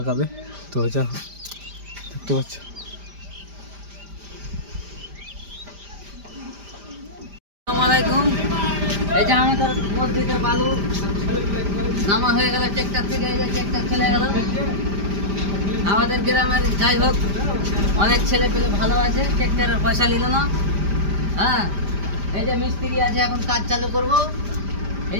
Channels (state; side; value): late; left; 5.0 ms